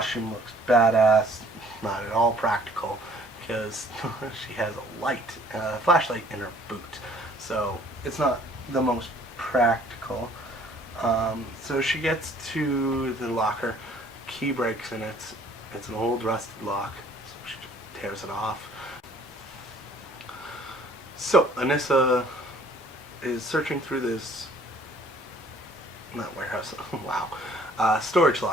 looks badass. Not at all practical because she has a flashlight in her boot, so it's not the most practical. So she gets to the locker, key breaks in it. It's an old rusted lock, so she tears it off. So Anissa is searching through this, not warehouse, wow, storage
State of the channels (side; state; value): both; normal; correlation 0.56